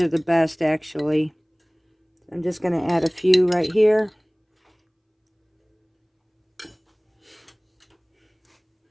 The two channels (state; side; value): identical; both; correlation 1.00